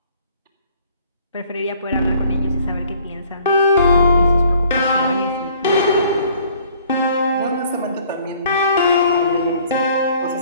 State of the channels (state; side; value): inverted; both; correlation -0.57